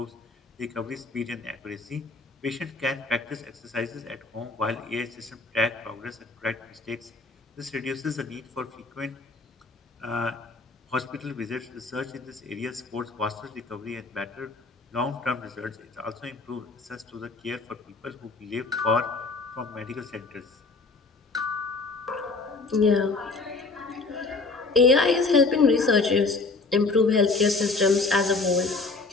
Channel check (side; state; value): right; quieter; 3.8 dB